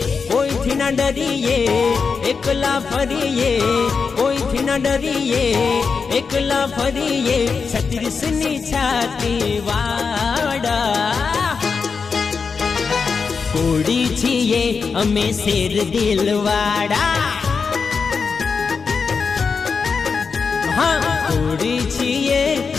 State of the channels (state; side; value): quieter; right; 5.3 dB